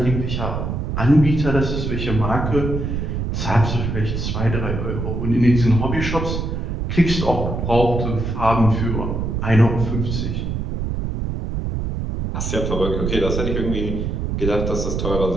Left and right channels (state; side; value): noise; right; rumble, 2 dB below the sound